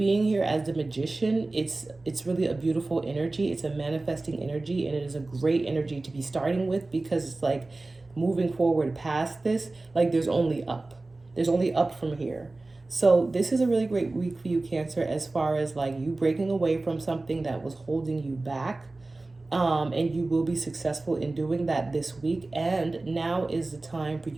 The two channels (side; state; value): left; quieter; 3.1 dB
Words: here as the magician, it's really a beautiful energy. It's a manifesting energy, and it is a great energy to be starting with, because it's like moving forward past this, like there's only up. There's only up from here. So this is a really great week for you, Cancer, as far as like you breaking away from something that was holding you back. And you will be successful in doing that this week. And now is the time for